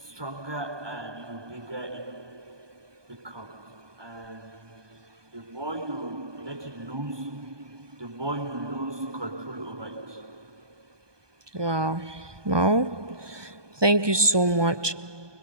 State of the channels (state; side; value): late; left; 1.2 ms